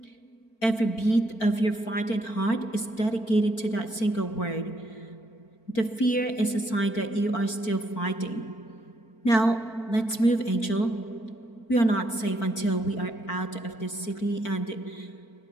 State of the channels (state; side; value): late; right; 4.5 ms